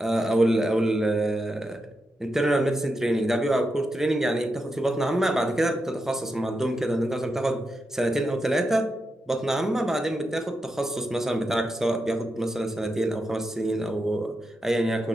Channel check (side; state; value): both; normal; correlation 0.86